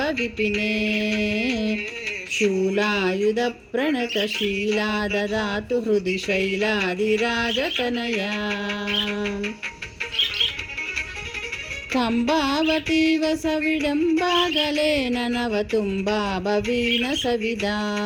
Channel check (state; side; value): identical; both; correlation 1.00